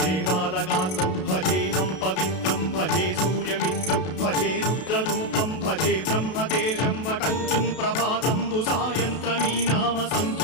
बालगात्रं भजेऽहं पवित्रं भजे सूर्यमित्रं भजे रुद्ररूपं भजे ब्रह्मदेवं वटञ्चुं प्रभाతంబు సాయంత్రమీ నామ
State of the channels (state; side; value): late; right; 32 ms